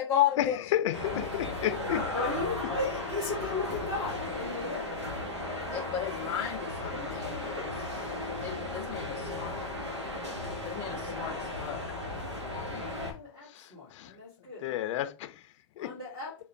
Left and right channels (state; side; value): quieter; right; 5.3 dB